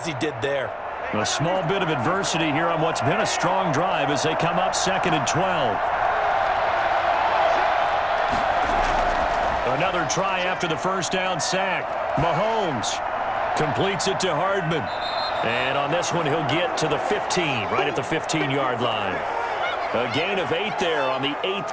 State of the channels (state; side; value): identical; both; correlation 1.00